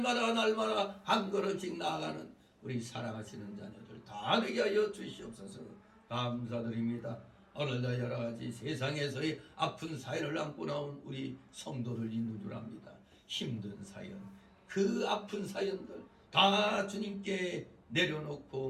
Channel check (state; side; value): identical; both; correlation 1.00